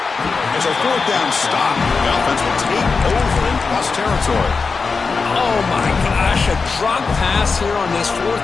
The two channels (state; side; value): quieter; right; 4.7 dB